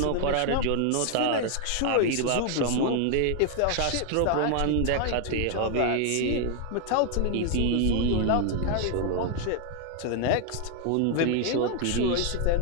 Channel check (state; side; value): different; both; correlation 0.00